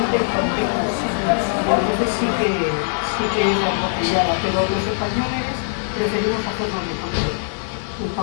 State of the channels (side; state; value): right; silent; digital silence